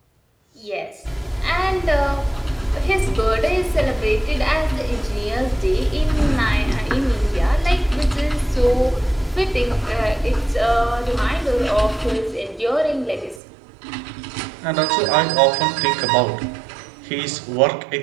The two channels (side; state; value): left; drops out; at 13.4 s